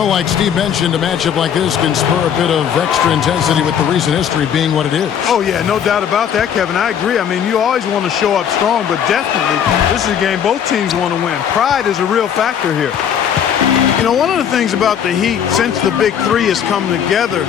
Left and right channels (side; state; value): right; quieter; 8.6 dB